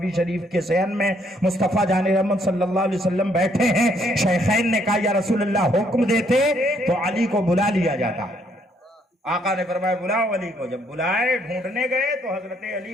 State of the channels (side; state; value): both; normal; correlation 0.69